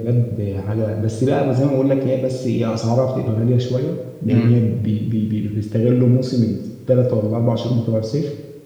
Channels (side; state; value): both; identical; correlation 1.00